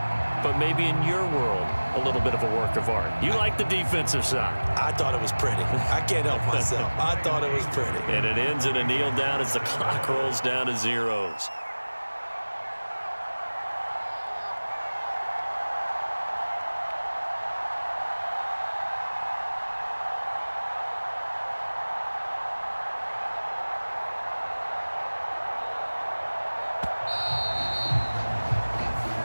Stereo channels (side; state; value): both; inverted; correlation -1.00